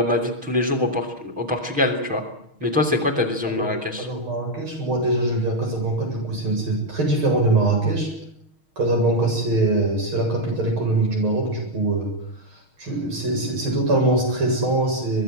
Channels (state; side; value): late; left; 6.4 ms